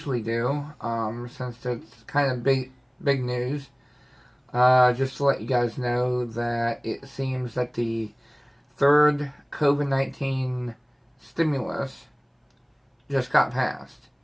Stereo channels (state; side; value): identical; both; correlation 1.00